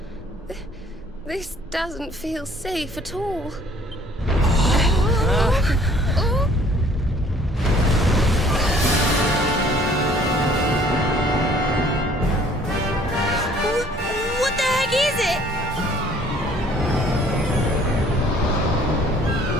This doesn't feel safe at all. Oh. What the heck is it?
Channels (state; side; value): normal; both; correlation 0.57